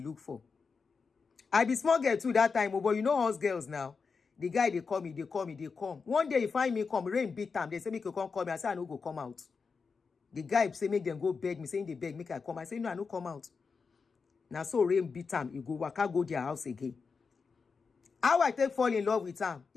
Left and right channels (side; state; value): right; quieter; 5.1 dB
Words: for. I be small girl too that time, but you know us girls now. The guy they call me. One day he find me come, rain beat time. They say make you come call me. I say I no go come out. The guy say make them go beg me, saying they beg, make I come. I say no, I no come out. Now so rain beat time, you go waka go their house again. How I take fall in love with him?